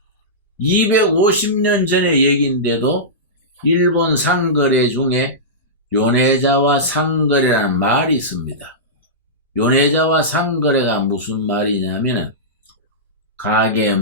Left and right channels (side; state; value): both; normal; correlation -0.16